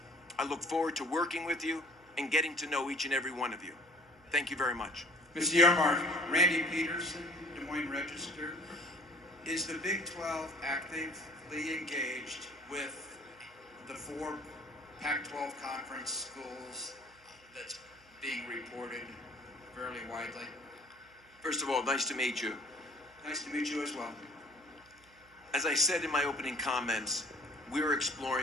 I look forward to working with you and getting to know each and every one of you. Thank you very much. Mr. Yormark, Randy Peterson, Des Moines Register. Is the Big 12 actively engaged with the 4 Pac-12 conference schools that's being reported fairly widely? First of all, nice to meet you. Nice to meet you as well. As I said in my opening comments, we're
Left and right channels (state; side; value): noise; right; hum, 29 dB below the sound